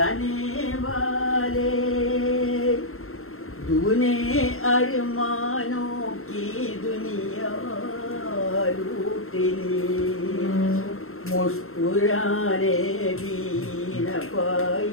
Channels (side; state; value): right; late; 0.62 ms